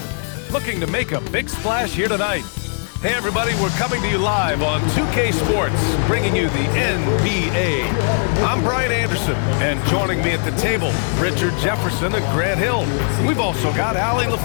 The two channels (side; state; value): right; silent; 57 dB below the other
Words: looking to make a big splash here tonight. Hey everybody, we're coming to you live on 2K Sports, bringing you the NBA. I'm Brian Anderson, and joining me at the table, Richard Jefferson and Grant Hill. We've also got Allie